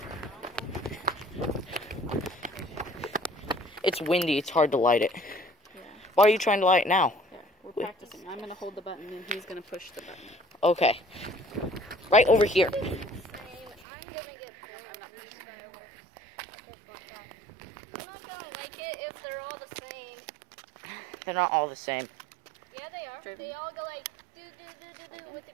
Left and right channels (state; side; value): drops out; left; at 13.9 s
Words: It's windy, it's hard to light it. Yeah. Why are you trying to light it now? Yeah, we're practicing. I'm going to hold the button and he's going to push the button. Okay. Right over here. I'm gonna get I'm not gonna like it if they're all the same. They're not all the same. Yeah, they are. Driven. They all go like do with the